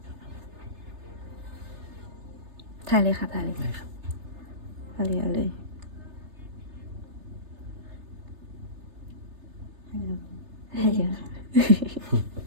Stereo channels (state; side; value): late; left; 3.3 ms